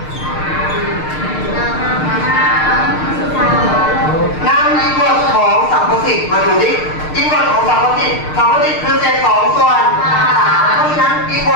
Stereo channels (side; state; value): right; late; 6.6 ms